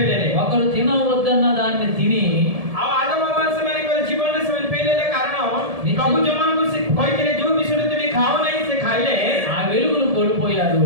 ହେଲେ। ఒకరు తినవద్దన్న దాన్ని తిని ଆଉ ଆଦମ ହବା ସେମାନଙ୍କର ଜୀବନରେ ସେମାନେ ଫେଲ୍ ହେଲେ କାରଣ ପ୍ରଭୁ ଯୋଉମାନଙ୍କୁ ସେ କହିଥିଲେ ଯୋଉ ବିଷୟରେ ତୁମେ ଖାଅ ନାହିଁ ସେ ଖାଇଲେ। ఆ వెలుగును కోల్పోయారు.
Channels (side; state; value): left; late; 1.7 ms